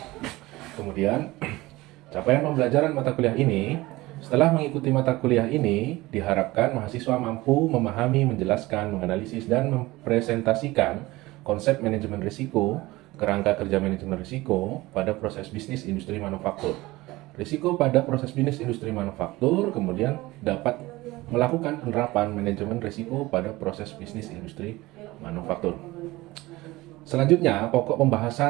Kemudian, capaian pembelajaran mata kuliah ini. Setelah mengikuti mata kuliah ini, diharapkan mahasiswa mampu memahami, menjelaskan, menganalisis, dan mempresentasikan konsep manajemen risiko, kerangka kerja manajemen risiko pada proses bisnis industri manufaktur. Risiko pada proses bisnis industri manufaktur kemudian dapat melakukan penerapan manajemen risiko pada proses bisnis industri manufaktur. Selanjutnya, pokok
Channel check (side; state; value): left; quieter; 19.7 dB